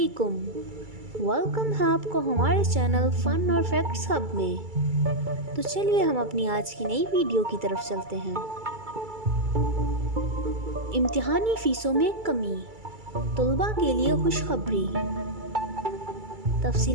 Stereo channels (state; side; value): late; left; 2.3 ms